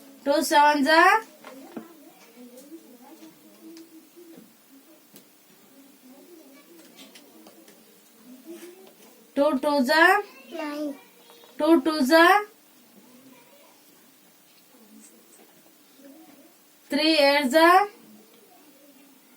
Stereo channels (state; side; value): identical; both; correlation 1.00